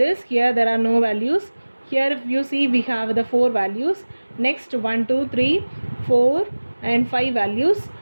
here there are no values. Here if you see, we have the 4 values. Next 1, 2, 3, 4 and 5 values.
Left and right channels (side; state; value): both; inverted; correlation -1.00